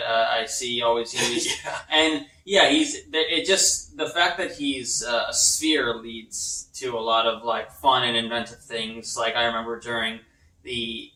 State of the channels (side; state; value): both; identical; correlation 1.00